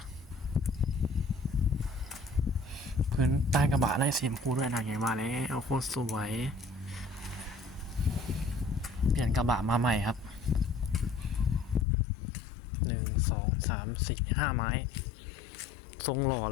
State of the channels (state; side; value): drops out; right; at 11.9 s